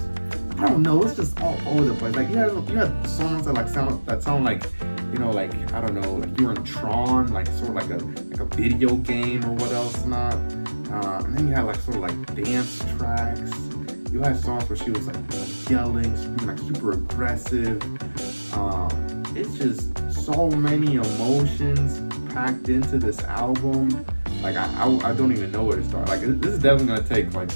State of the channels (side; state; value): both; inverted; correlation -1.00